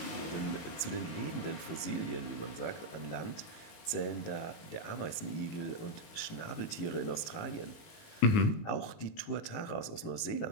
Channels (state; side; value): late; right; 18 ms